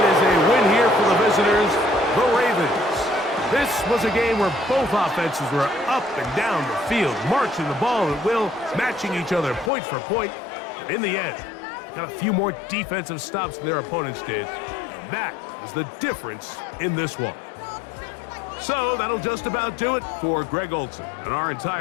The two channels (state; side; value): drops out; right; at 9.7 s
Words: is a win here for the visitors, the Ravens. This was a game where both offenses were up and down the field, marching the ball at will, matching each other point for point. And in the end, got a few more defensive stops than their opponents did. That is the difference in this one. So that'll just about do it for Greg Olson and our